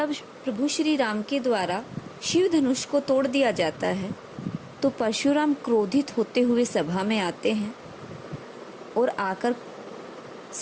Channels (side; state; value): both; identical; correlation 1.00